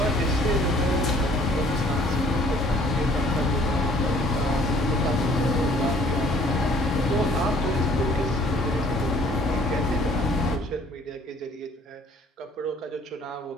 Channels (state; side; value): normal; both; correlation 0.57